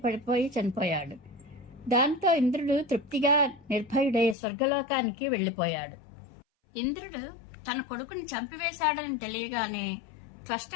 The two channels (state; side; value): drops out; right; at 4.4 s